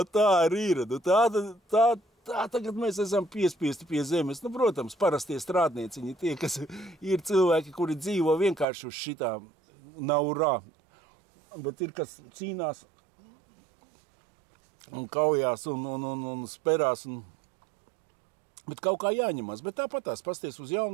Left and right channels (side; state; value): left; drops out; at 8.7 s